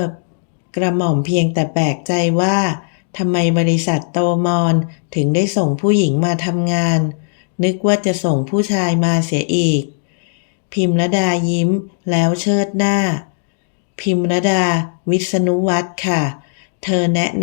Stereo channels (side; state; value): right; silent; digital silence